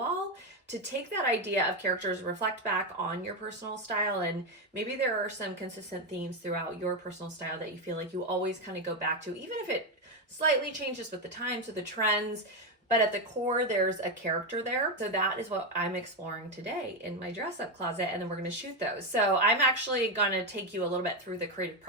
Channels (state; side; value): normal; both; correlation 0.08